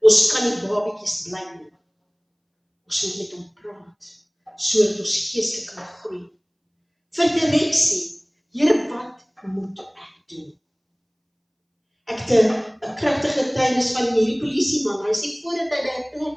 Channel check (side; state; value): both; identical; correlation 1.00